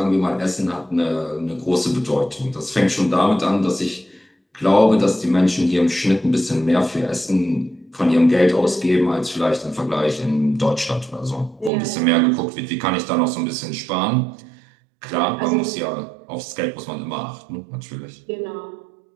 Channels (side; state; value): left; drops out; at 11.7 s